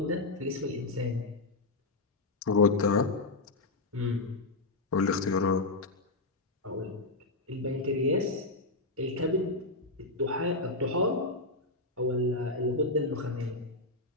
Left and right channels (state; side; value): quieter; right; 3.0 dB